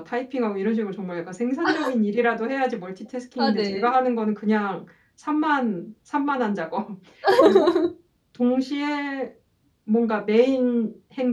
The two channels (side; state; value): both; identical; correlation 1.00